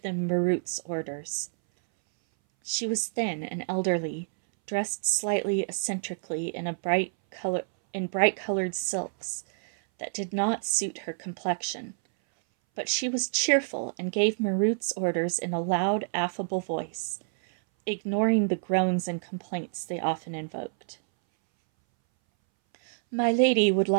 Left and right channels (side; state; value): left; silent; 59 dB below the other